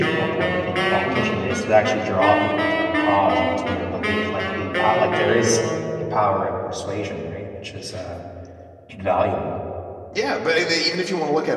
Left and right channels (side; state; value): both; identical; correlation 1.00